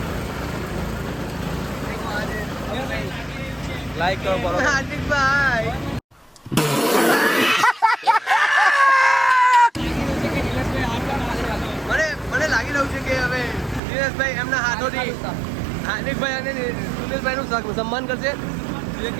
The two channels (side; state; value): left; drops out; at 13.8 s